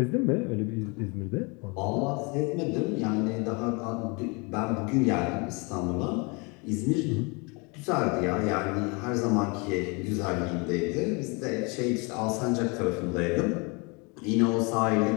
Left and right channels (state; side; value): quieter; right; 30.2 dB